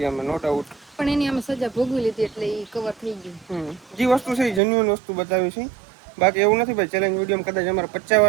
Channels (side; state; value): left; drops out; at 4.6 s